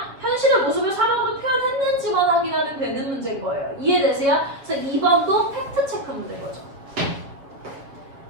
현실의 모습을 사막으로 표현했는지만 확인하면 되는 문제인 거예요. 이해되세요? 그래서 2번도 팩트체크 문제인 거죠.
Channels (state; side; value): late; left; 7.3 ms